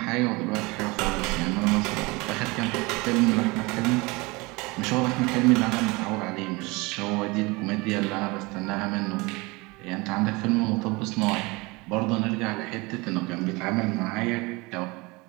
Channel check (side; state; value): left; quieter; 24.8 dB